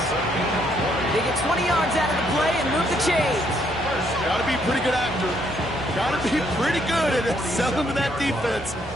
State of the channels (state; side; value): normal; both; correlation 0.71